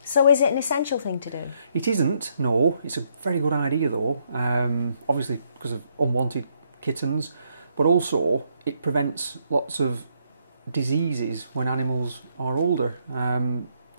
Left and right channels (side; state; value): both; inverted; correlation -0.74